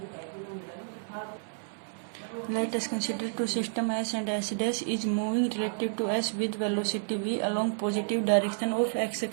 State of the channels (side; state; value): left; silent; 57 dB below the other